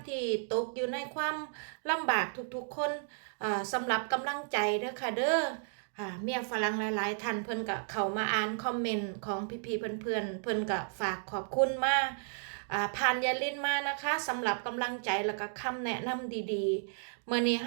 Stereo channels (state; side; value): silent; left; digital silence